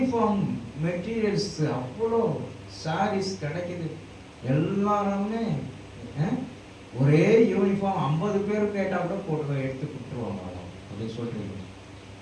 மெட்டீரியல்ஸ், அவ்வளோ சாரீஸ் கிடைக்குது. எல்லாருமே ஒரே யூனிஃபார்ம் 50 பேர் கேட்டா கூட போட்டு எடுத்து கொடுத்துருவாங்க அப்படின்னு சொல்றீங்க.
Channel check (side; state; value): both; identical; correlation 1.00